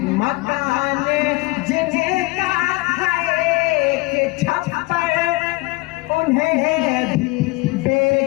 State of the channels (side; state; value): right; quieter; 22.5 dB